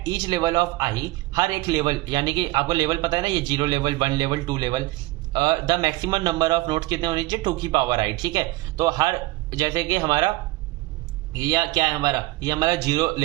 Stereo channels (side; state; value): left; quieter; 20.0 dB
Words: each level of I, हर एक लेवल, यानी कि आपको लेवल पता है ना, ये 0 level 1 level 2 level, the maximum number of notes कितने होने चाहिए, 2 की पावर आई, ठीक है। तो हर जैसे कि हमारा ये क्या है, हमारा ये हमारा 0